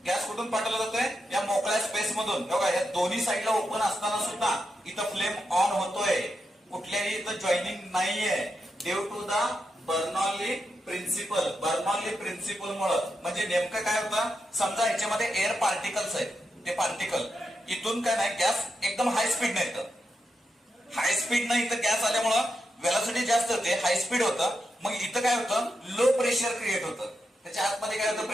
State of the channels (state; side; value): normal; both; correlation 0.86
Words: गॅस कुठून पाठवला जातोय, या मोकळ्या स्पेस मधून. बघा या दोन्ही साईडला ओपन असताना सुद्धा इथं फ्लेम ऑन होतोय, कुठल्याही इथं जॉईनिंग नाहीये. Due to the Bernoulli principle. Bernoulli principle मुळे म्हणजे नेमकं काय होतं, समजा ह्याच्यामध्ये एअर पार्टिकल्स आहेत, ते पार्टिकल इथून काय नाही, गॅस एकदम हाय स्पीड नाही, हाय स्पीड नाही इथं गॅस आल्यामुळं व्हेलॉसिटी जास्त होते, हाय स्पीड होतं. मग इथं काय होतं, लो प्रेशर क्रिएट होतं. त्याच्या आतमध्ये काय होतं,